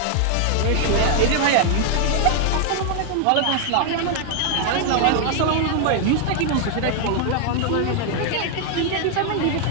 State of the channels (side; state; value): both; different; correlation 0.00